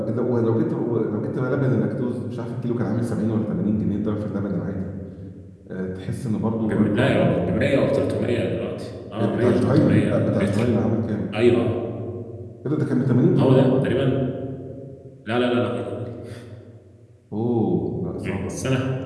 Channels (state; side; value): identical; both; correlation 1.00